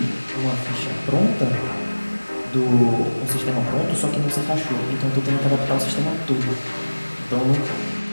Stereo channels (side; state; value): both; inverted; correlation -1.00